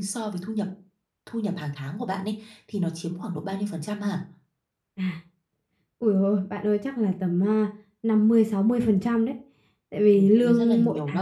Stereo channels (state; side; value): identical; both; correlation 1.00